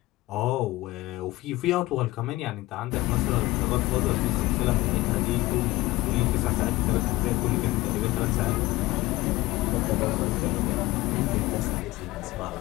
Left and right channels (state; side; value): quieter; right; 18.8 dB